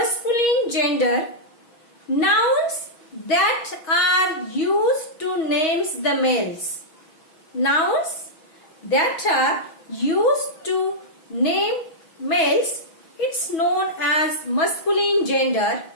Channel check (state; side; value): late; right; 6.2 ms